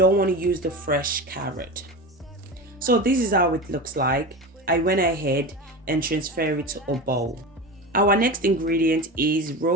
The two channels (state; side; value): normal; both; correlation 0.27